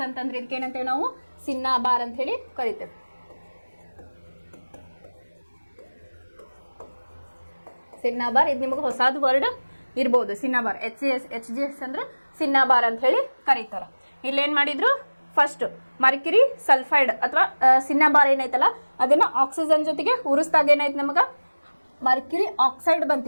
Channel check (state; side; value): inverted; both; correlation -1.00